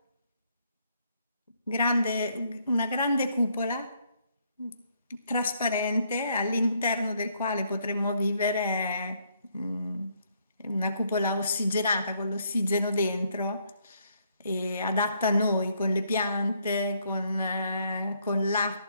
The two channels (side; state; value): both; inverted; correlation -0.71